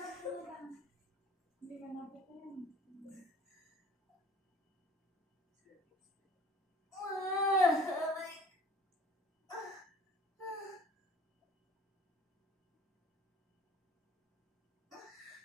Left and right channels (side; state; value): both; normal; correlation 0.49